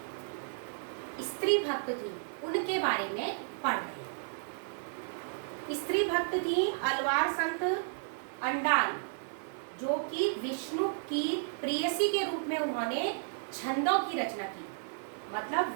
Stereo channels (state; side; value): silent; left; digital silence